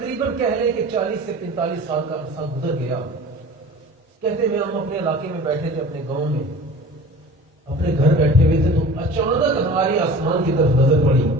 کہہ لیں کہ 40 سے 45 سال کا عرصہ گزر گیا. کہتے ہیں ہم اپنے علاقے میں بیٹھے تھے، اپنے گاؤں میں اپنے گھر بیٹھے ہوئے تھے تو اچانک ہماری آسمان کی طرف نظر پڑی.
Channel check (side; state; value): both; normal; correlation 0.41